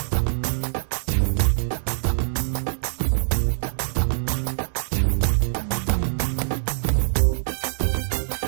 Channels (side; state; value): left; silent; digital silence